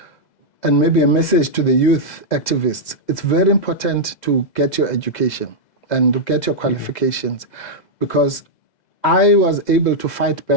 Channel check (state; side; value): late; right; 2.0 ms